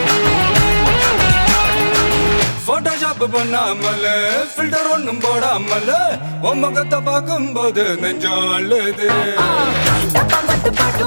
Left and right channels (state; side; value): inverted; both; correlation -1.00